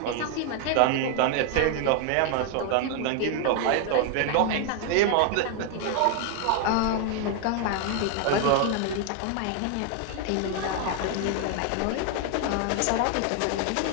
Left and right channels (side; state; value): both; different; correlation 0.00